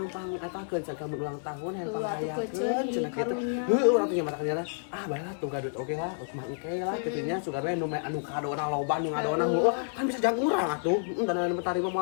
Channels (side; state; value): right; silent; digital silence